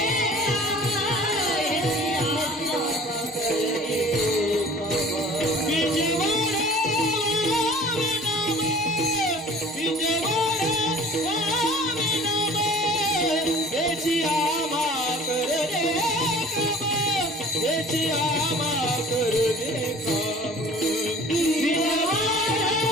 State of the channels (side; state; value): both; normal; correlation 0.46